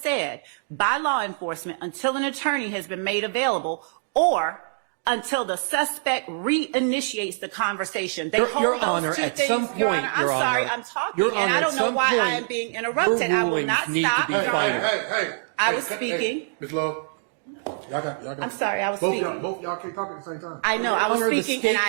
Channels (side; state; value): left; silent; digital silence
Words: by law enforcement until an attorney has been made available or until the suspect reinitiates the conversation. Your Honor, at some point, Your Honor, I'm sorry, I'm talking, Your and Honor, I at don't know some why I point, am being interrupted. I will rulings not need stop. to be Your Honor. final. I was speaking. Ms. Love, y'all got. I'm sorry, I was both speaking. Both y'all can't talk at the same time. I know, I Honor, the was speaking, and I